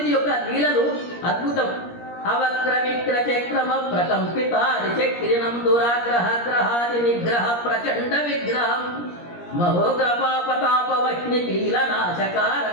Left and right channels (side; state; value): right; late; 17 ms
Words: యొక్క లీలలు అద్భుతం. అవక్ర విక్ర చక్రమ ప్రకంపిత చక్రిణం దురాగ్రహ గ్రహాది నిగ్రహ ప్రచండ విగ్రహం మహోగ్రపాపతాపవహ్ని